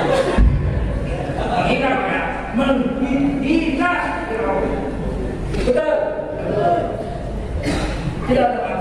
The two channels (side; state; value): both; identical; correlation 1.00